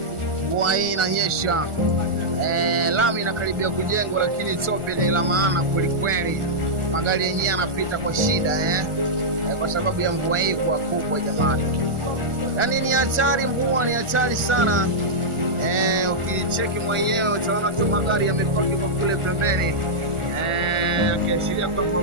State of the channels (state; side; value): late; left; 1.4 ms